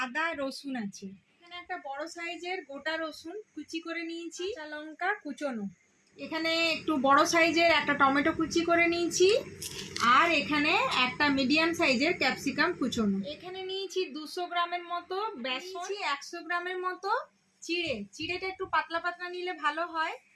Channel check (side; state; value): both; identical; correlation 1.00